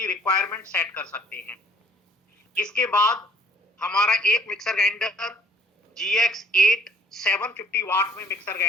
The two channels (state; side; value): normal; both; correlation 0.58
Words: requirement set कर सकते हैं। इसके बाद हमारा एक मिक्सर ग्राइंडर GX8 750 वाट में मिक्सर